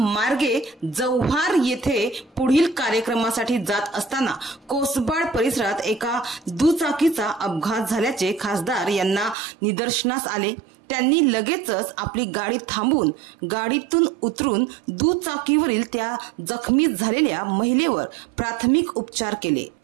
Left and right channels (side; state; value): left; drops out; at 9.3 s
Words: जव्हार येथे पुढील कार्यक्रमासाठी जात असताना कोसबाड परिसरात एका दुचाकीचा अपघात झाल्याचे खासदार यांना निदर्शनास आले। त्यांनी लगेचच आपली गाडी थांबवून गाडीतून उतरून दुचाकीवरील त्या जखमी झालेल्या महिलेवर प्राथमिक उपचार केले।